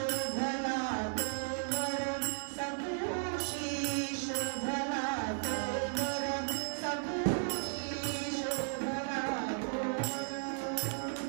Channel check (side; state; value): left; silent; 54 dB below the other